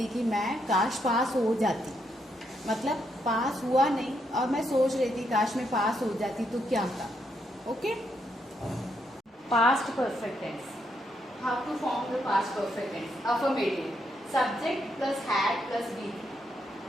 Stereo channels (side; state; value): both; normal; correlation 0.78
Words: कि मैं काश पास हो जाती, मतलब पास हुआ नहीं और मैं सोच रही थी काश मैं पास हो जाती तो क्या था. Okay. Past perfect tense. How to form the past perfect tense? Affirmative, subject plus had plus be.